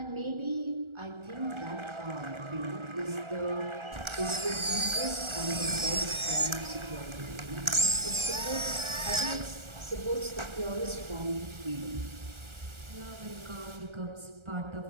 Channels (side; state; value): left; late; 1.4 ms